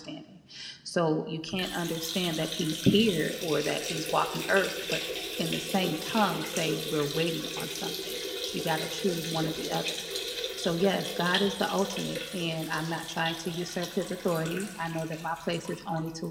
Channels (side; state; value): both; identical; correlation 1.00